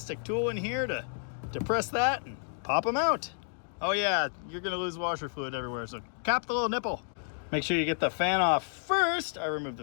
tool in here to depress that and pop them out. Oh yeah, you're gonna lose washer fluid everywhere, so cap the little nipple. Make sure you get the fan off first. I removed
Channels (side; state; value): right; silent; digital silence